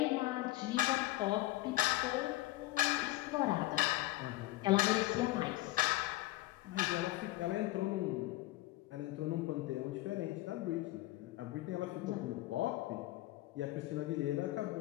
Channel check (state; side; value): quieter; right; 17.8 dB